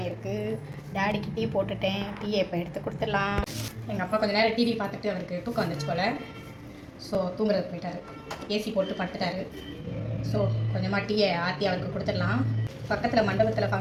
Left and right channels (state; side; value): identical; both; correlation 1.00